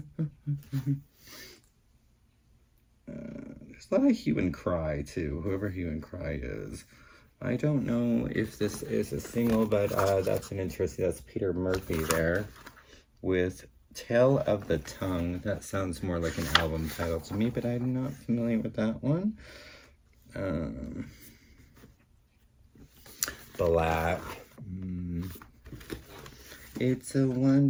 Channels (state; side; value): identical; both; correlation 1.00